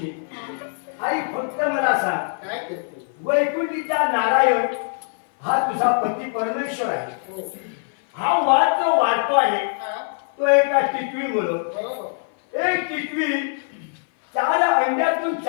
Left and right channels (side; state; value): right; silent; 56 dB below the other